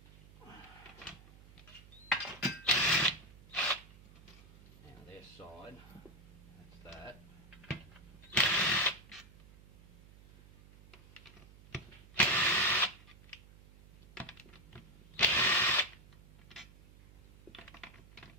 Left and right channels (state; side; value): noise; right; hum, 22 dB below the sound